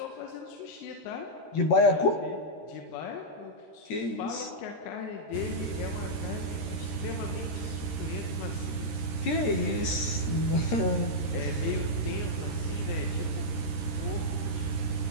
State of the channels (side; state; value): right; late; 13 ms